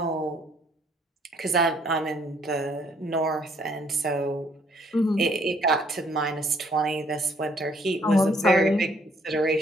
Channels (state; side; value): normal; both; correlation 0.64